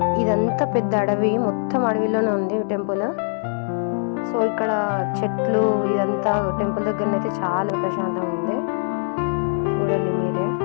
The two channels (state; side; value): silent; right; digital silence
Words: ఇదంతా పెద్ద అడవి, మొత్తం అడవిలోనే ఉంది టెంపుల్. సో ఇక్కడ చెట్లు, ఇదంతా టెంపుల్ దగ్గరనైతే చాలా ప్రశాంతంగా ఉంది. చూడండి మీరే.